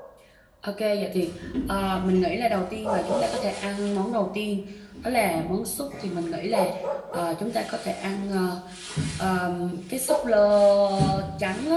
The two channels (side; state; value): both; identical; correlation 1.00